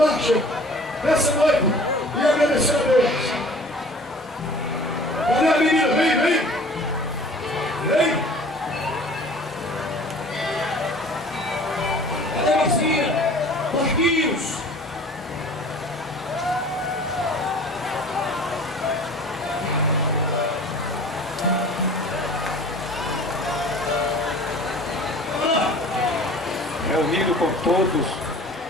nessa noite e agradecer a Deus. Cadê a menina? Vem, vem! Vem! Cadê a vizinha? Marquinhos! Reunido com todos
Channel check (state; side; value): normal; both; correlation 0.46